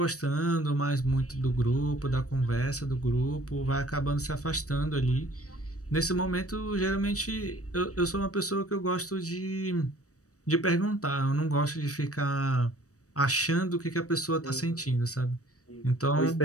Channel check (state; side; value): late; right; 0.66 ms